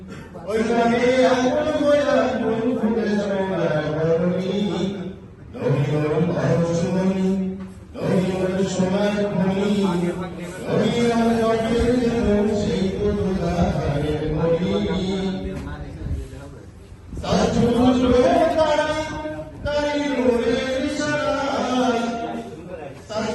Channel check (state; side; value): identical; both; correlation 1.00